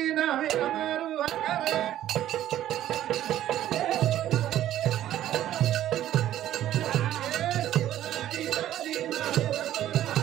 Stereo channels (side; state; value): left; quieter; 12.6 dB